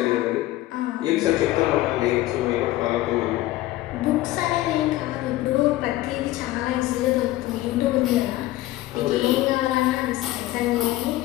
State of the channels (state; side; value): quieter; right; 16.3 dB